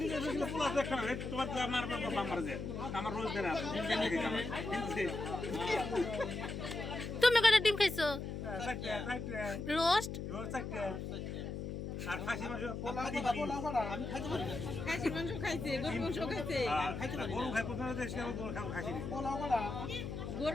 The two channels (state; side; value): noise; left; hum, 5 dB below the sound